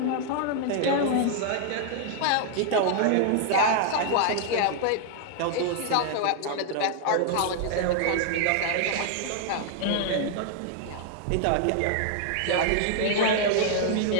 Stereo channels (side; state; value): both; different; correlation 0.00